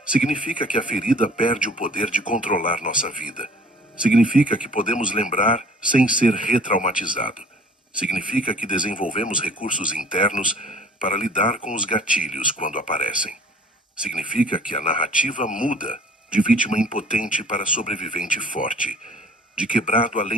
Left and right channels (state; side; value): normal; both; correlation 0.50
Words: Significa que a ferida perde o poder de controlar nossa vida. Significa que podemos lembrar sem ser retraumatizado. Significa que desenvolvemos recursos internos para lidar com os gatilhos quando aparecem. Significa que a narrativa muda de vítima impotente para sobrevivente forte, de quebrado